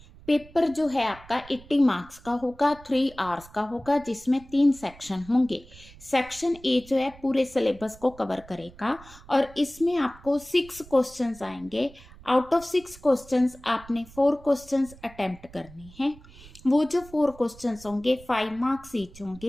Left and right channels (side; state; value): right; noise; rumble, 21 dB below the sound